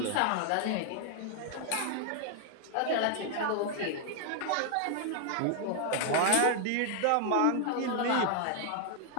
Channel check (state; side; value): different; both; correlation 0.00